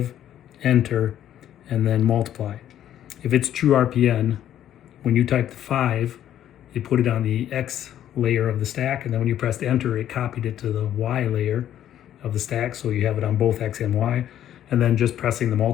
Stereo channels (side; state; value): right; quieter; 11.2 dB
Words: enter, and then multiply. If it's true RPN, when you type the 5, you put it on the X layer of the stack, and then when you pressed enter, it copied it to the Y layer of the stack, so you have it on both X and Y. And then just pressing the